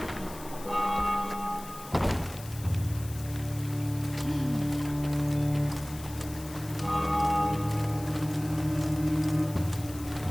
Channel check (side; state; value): left; noise; hiss, 16 dB below the sound